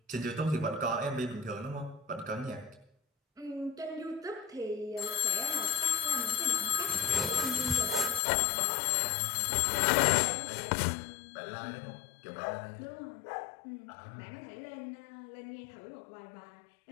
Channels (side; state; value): right; drops out; at 8.2 s